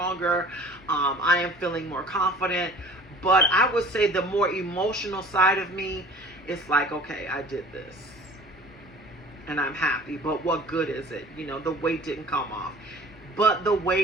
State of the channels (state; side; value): normal; both; correlation 0.45